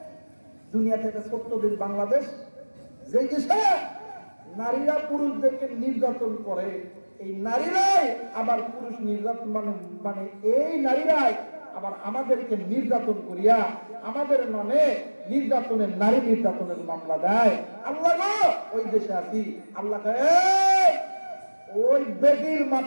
দুনিয়াতে একটা ছোট্ট দেশ বাংলাদেশ, যে দেশে নারীরা পুরুষদেরকে নির্যাতন করে, এই নারীরাই আবার পুরুষ নির্যাতন মানে মানে এই নারীরাই আবার আমাদেরকে নির্যাতন করিয়া আমাদের নামে নির্যাতনের, নারী নির্যাতনের মামলা দেয়। আল্লাহ গো, ওই দেশে আছি, আল্লাহ ওই বেটির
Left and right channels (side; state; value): both; inverted; correlation -1.00